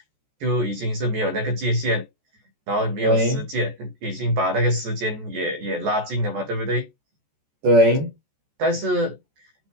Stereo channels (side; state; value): left; late; 14 ms